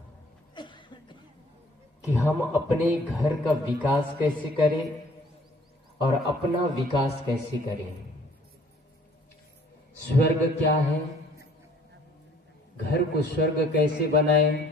कि हम अपने घर का विकास कैसे करें और अपना विकास कैसे करें। स्वर्ग क्या है, घर को स्वर्ग कैसे बनाएं,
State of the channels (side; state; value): both; normal; correlation 0.57